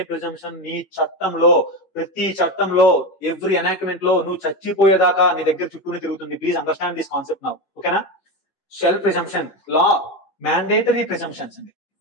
ప్రిజంప్షన్ నీ చట్టంలో, ప్రతి చట్టంలో, ఎవ్రీ ఎనాక్ట్మెంట్ లో నువ్వు చచ్చిపోయేదాకా నీ దగ్గర చుట్టూనే తిరుగుతుంది. Please understand this concept now, ఓకేనా? Shall presumption, law mandatory presumptions అండి,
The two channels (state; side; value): late; right; 11 ms